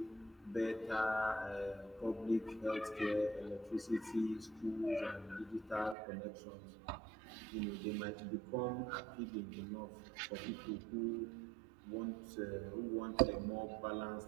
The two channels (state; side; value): drops out; left; at 6.0 s